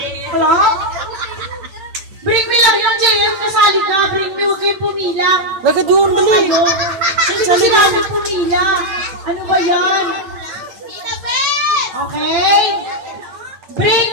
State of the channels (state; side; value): late; left; 8.8 ms